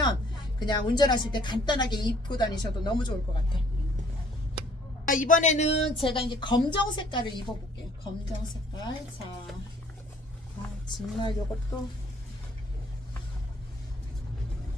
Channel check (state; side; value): normal; both; correlation 0.59